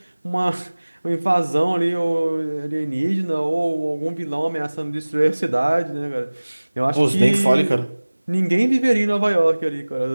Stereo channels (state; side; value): inverted; both; correlation -1.00